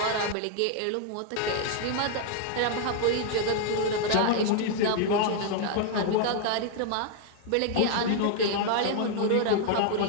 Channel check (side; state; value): both; different; correlation 0.00